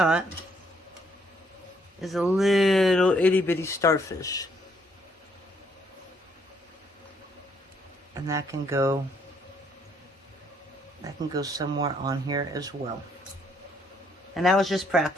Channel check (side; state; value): both; normal; correlation 0.69